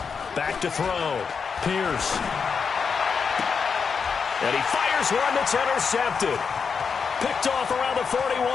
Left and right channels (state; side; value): quieter; right; 5.9 dB